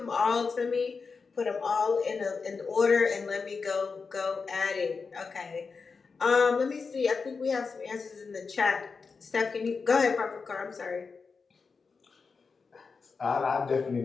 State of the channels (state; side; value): quieter; right; 4.9 dB